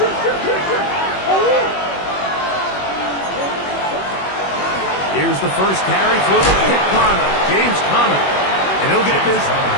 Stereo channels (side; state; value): right; late; 21 ms